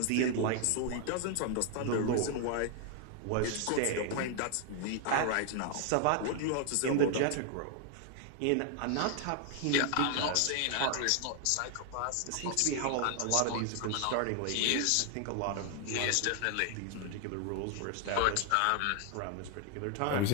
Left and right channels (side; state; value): both; different; correlation 0.00